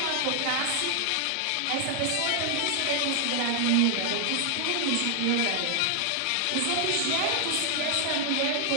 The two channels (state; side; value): different; both; correlation 0.00